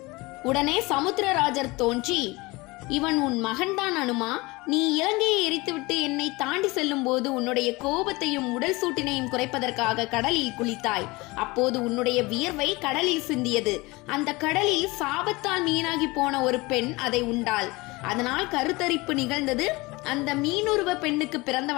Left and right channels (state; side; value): quieter; right; 23.2 dB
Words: உடனே சமுத்திரராஜர் தோன்றி, இவன் உன் மகன்தான் அனுமா. நீ இலங்கையை எரித்துவிட்டு என்னை தாண்டி செல்லும் போது உன்னுடைய கோபத்தையும் உடல் சூட்டினையும் குறைப்பதற்காக கடலில் குளித்தாய். அப்போது உன்னுடைய வியர்வை கடலில் சிந்தியது. அந்த கடலில் சாபத்தால் மீனாகி போன ஒரு பெண் அதை உண்டாள். அதனால் கருத்தரிப்பு நிகழ்ந்தது. அந்த மீனுருவ பெண்ணுக்கு